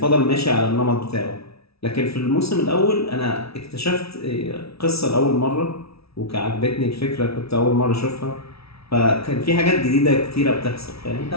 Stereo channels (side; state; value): right; late; 0.76 ms